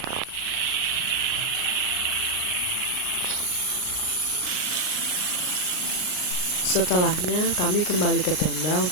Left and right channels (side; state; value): right; late; 39 ms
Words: Setelahnya kami kembali ke tenda